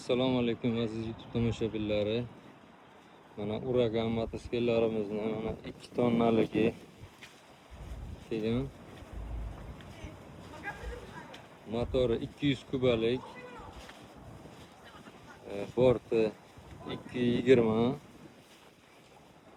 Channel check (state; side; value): identical; both; correlation 1.00